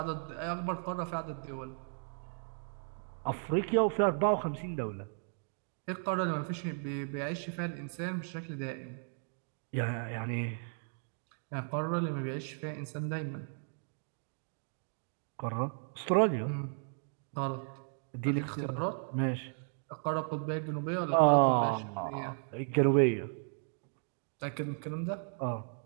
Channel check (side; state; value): left; silent; 54 dB below the other